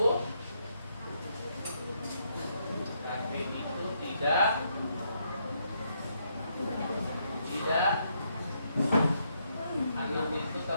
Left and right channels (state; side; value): inverted; both; correlation -0.76